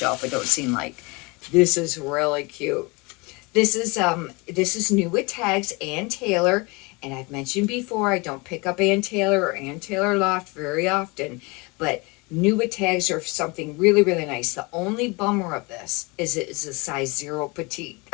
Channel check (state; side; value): quieter; right; 27.0 dB